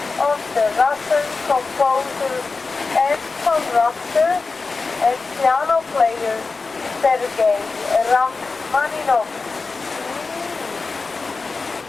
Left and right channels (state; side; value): quieter; right; 4.1 dB